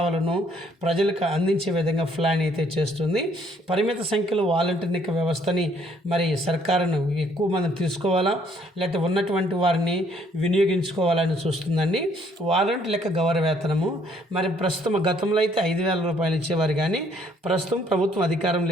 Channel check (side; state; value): both; normal; correlation 0.64